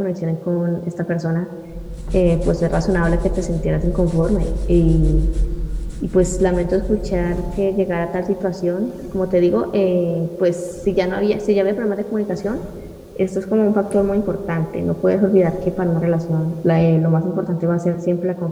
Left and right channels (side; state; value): both; identical; correlation 1.00